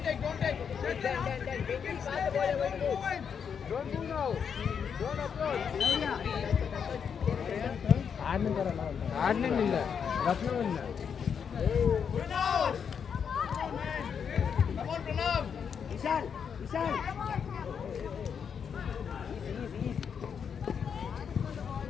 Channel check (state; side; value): quieter; right; 7.1 dB